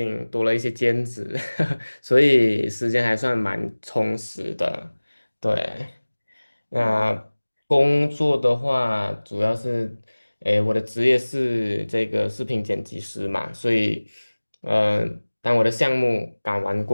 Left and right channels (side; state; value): both; inverted; correlation -1.00